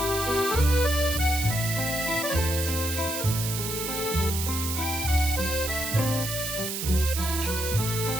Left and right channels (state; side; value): noise; right; hiss, 4 dB below the sound